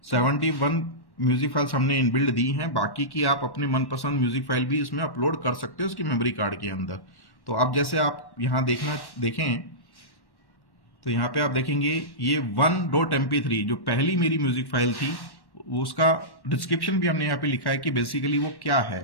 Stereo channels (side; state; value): right; late; 1.1 ms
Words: 71 म्यूजिक फाइल्स हमने इनबिल्ड दी हैं, बाकी की आप अपने मनपसंद म्यूजिक फाइल भी इसमें अपलोड कर सकते हो उसकी मेमोरी कार्ड के अंदर। तो अब जैसे आप यहाँ देखें तो यहाँ पे आप देखेंगे ये 1.mp3 जो पहली मेरी म्यूजिक फाइल थी, उसका डिस्क्रिप्शन भी हमने यहाँ पे लिखा है कि बेसिकली वो क्या है।